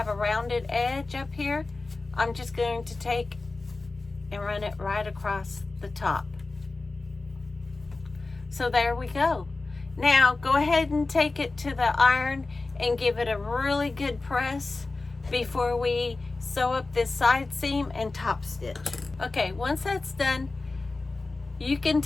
a rounded edge up here, I'm just going to take and run it right across the top. So there we go. Now go ahead and take it to the iron and give it a really good press before we sew up this side seam and top stitch. Okay, once that's done, you can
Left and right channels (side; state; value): right; quieter; 3.5 dB